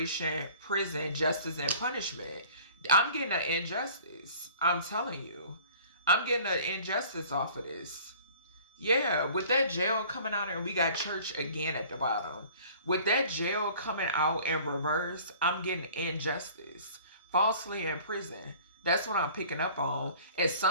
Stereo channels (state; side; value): inverted; both; correlation -0.49